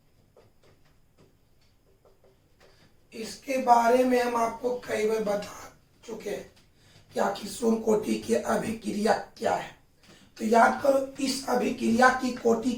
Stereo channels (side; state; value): both; identical; correlation 1.00